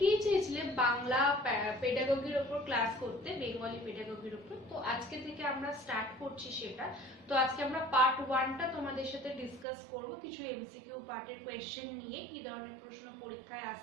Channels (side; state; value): left; drops out; at 9.7 s